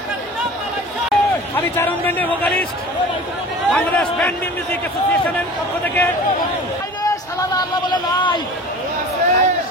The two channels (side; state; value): both; normal; correlation 0.40